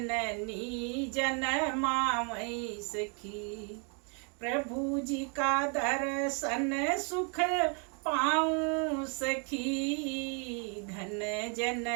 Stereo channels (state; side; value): quieter; left; 38.7 dB